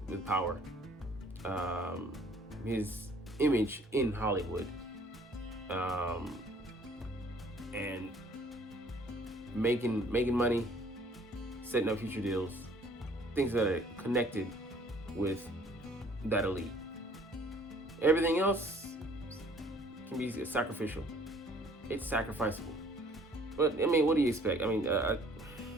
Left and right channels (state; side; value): normal; both; correlation 0.57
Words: power, his image in Hollywood, and making money, setting up future deals, things that are connected with that elite. Everything else can be sacrificial. It's sacrificable. But I mean, what do you expect? I mean,